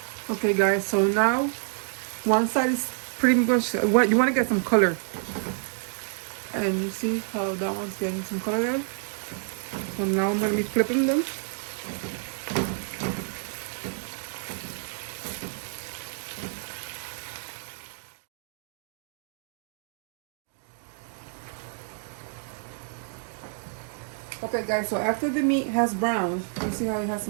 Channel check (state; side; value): silent; left; digital silence